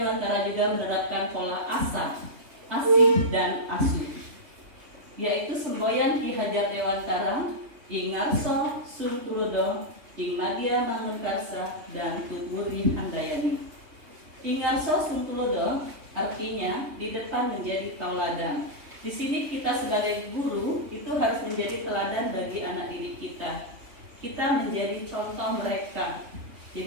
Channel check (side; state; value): left; late; 3.2 ms